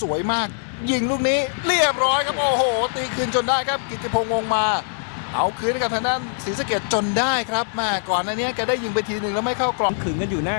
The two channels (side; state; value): right; silent; digital silence